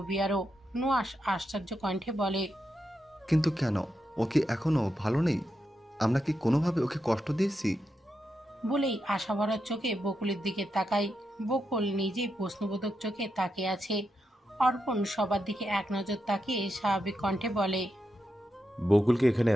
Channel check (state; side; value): normal; both; correlation 0.85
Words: নুহাস আশ্চর্য কণ্ঠে বলে, কিন্তু কেন? ও কি এখনো ভালো নেই? আমরা কি কোনোভাবে ওকে কষ্ট দিয়েছি? বলেই আশাভরা চোখে বকুলের দিকে তাকায়। বকুল নিজেই প্রশ্নবোধক চোখে তাকিয়ে আছে। অর্পণ সবার দিকে এক নজর তাকিয়ে স্বাভাবিক কণ্ঠে বলে, বকুলকে এখানে